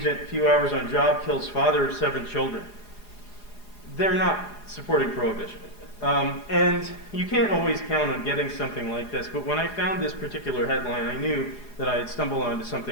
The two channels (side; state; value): right; late; 4.8 ms